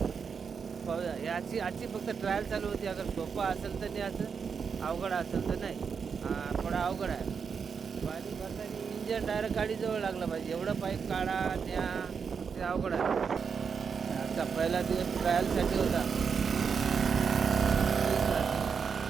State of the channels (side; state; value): left; quieter; 6.2 dB